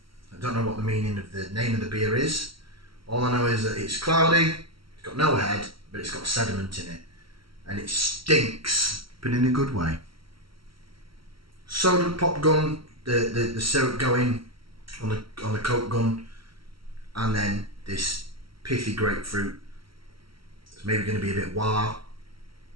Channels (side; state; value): left; late; 0.74 ms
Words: I don't know what the meaning of the name of the beer is. All I know is that it's cloudy, it's got no head, but it's got sediment in it. And it stinks, but in a good way. Soda pop gun, the syrup going on the Coke gun, and then this pithy grapefruit. It's maybe going to be a bit wah.